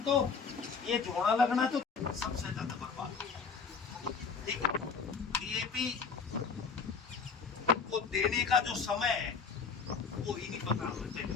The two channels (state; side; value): quieter; right; 5.4 dB